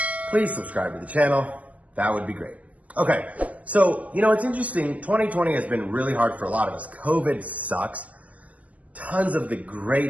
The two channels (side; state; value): left; late; 0.068 ms